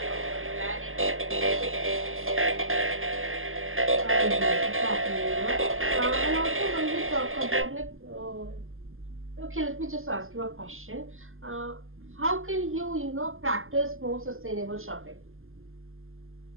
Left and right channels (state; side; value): late; left; 0.60 ms